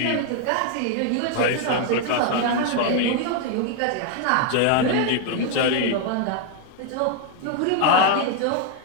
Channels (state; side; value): different; both; correlation 0.01